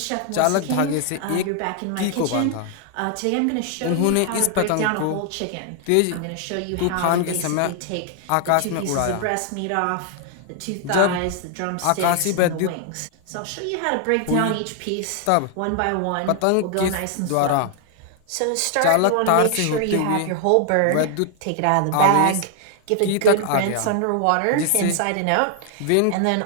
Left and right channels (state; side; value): different; both; correlation 0.00